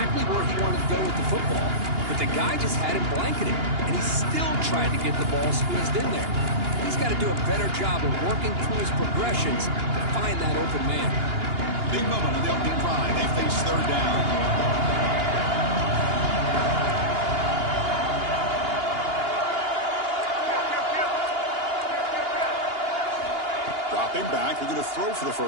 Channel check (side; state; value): left; late; 2.8 ms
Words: where he wanted to go with the football. But the guy just had him blanketed, and he still tried to get the ball squeezed in there. He's got to do a better job of working through his progressions to find that open man. Big moment on the opening drive. They face 3rd down. Dropping back. We're going to throw for the